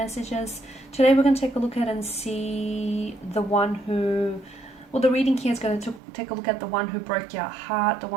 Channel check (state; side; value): drops out; left; at 6.0 s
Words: Today we're going to take a look at and see the one who, well, the reading here is going to take a look at the one who broke your heart, the